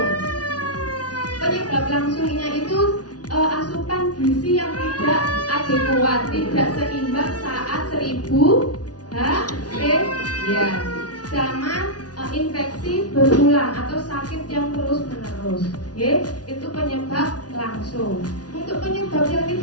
Penyebab langsungnya itu asupan gizi yang tidak adekuat, tidak seimbang saat 1000 ya, sama infeksi berulang atau sakit yang terus menerus, itu penyebab langsung. Untuk penyebab yang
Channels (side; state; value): right; late; 0.69 ms